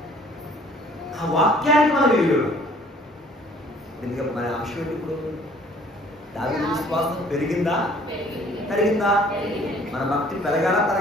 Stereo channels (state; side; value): normal; both; correlation 0.56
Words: ఆ వాక్యాన్ని మనం విలువ. ఎందుకంటే మన అంశం ఏంటి? ఇప్పుడు దావీదు విశ్వాసం పెరిగిందా తరిగిందా? మన భక్తి పెరగాలా